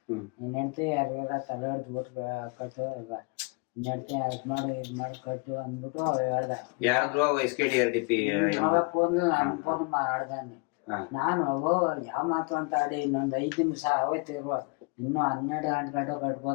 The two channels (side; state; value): right; quieter; 31.1 dB